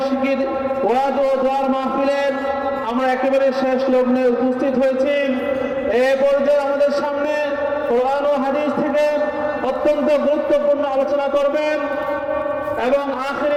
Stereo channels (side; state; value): both; identical; correlation 1.00